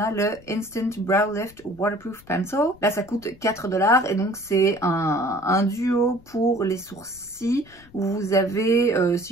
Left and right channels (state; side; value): noise; left; rumble, 25 dB below the sound